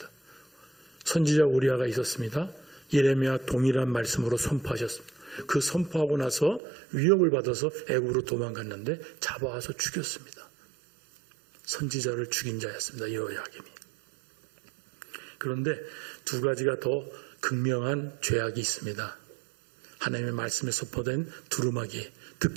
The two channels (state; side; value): drops out; left; at 6.6 s